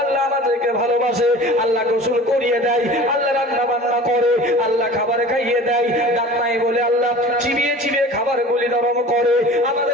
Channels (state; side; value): normal; both; correlation 0.41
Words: আল্লাহ আমাদেরকে ভালোবাসে, আল্লাহ গোসল করিয়ে দেয়, আল্লাহ রান্না বান্না করে, আল্লাহ খাবার খাইয়ে দেয়, দাঁত নাই বলে আল্লাহ চিবিয়ে চিবিয়ে খাবার গুলি নরম করে